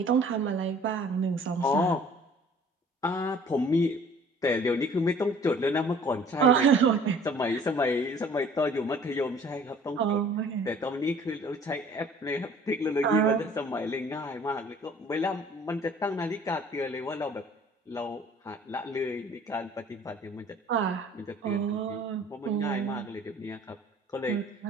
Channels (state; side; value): normal; both; correlation 0.52